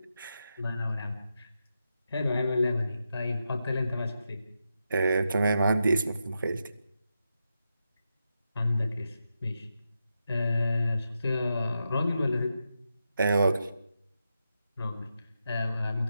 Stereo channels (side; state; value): both; inverted; correlation -0.87